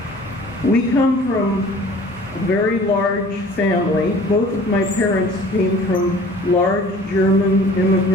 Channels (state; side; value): normal; both; correlation 0.48